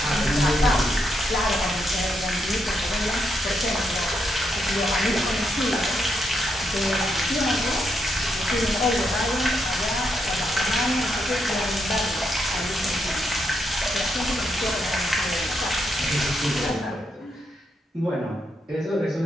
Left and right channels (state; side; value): normal; both; correlation 0.80